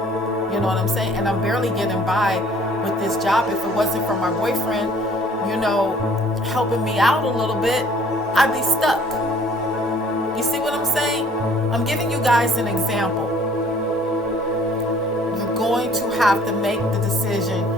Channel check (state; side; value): normal; both; correlation 0.56